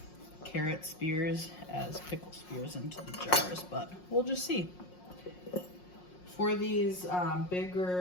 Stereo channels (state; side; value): late; right; 5.5 ms